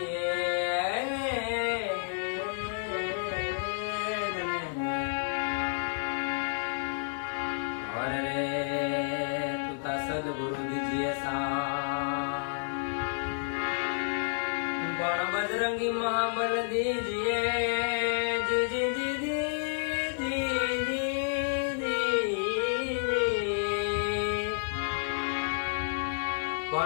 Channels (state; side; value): silent; right; digital silence